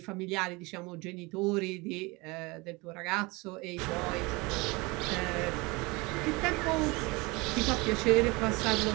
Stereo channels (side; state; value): left; quieter; 25.0 dB